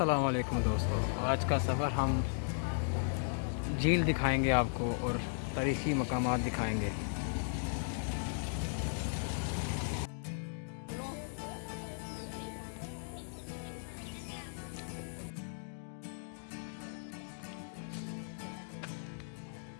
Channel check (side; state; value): right; silent; digital silence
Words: वालेकुम दोस्तों। आज का सफ़र हम झील दिखाएंगे आपको और तारीख़ी मकामात दिखाएंगे।